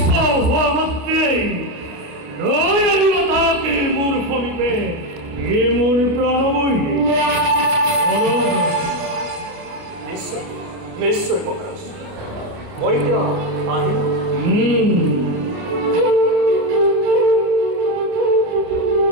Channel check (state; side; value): late; left; 29 ms